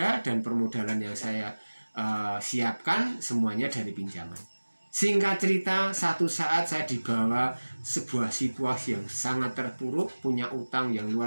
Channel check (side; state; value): both; inverted; correlation -1.00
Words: dan permodalan yang saya siapkan semuanya dari pinjaman. Singkat cerita, satu saat saya dibawa sebuah situasi yang sangat terpuruk, punya utang yang